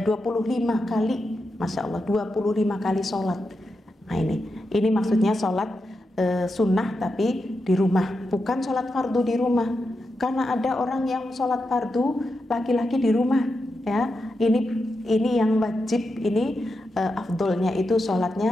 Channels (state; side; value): normal; both; correlation 0.87